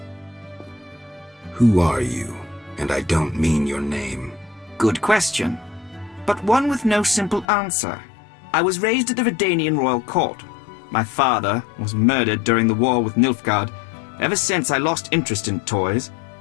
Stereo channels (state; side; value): drops out; right; at 7.5 s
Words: Who are you? And I don't mean your name. Good question, but one with no simple answer. I was raised at the Redanian royal court. My father was murdered during the war with Nilfgaard. Ever since I lost interest in toys,